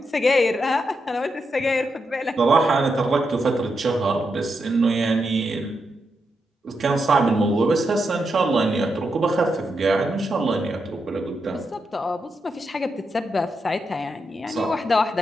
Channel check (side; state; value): both; normal; correlation 0.84